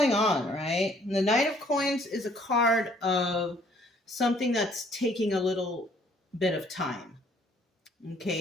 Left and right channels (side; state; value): both; normal; correlation 0.62